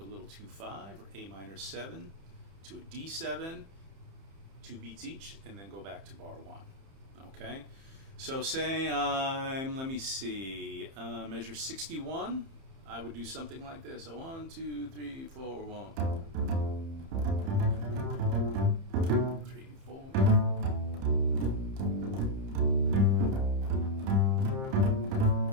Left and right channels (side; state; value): left; late; 30 ms